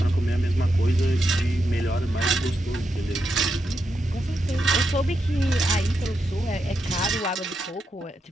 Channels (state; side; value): normal; both; correlation 0.85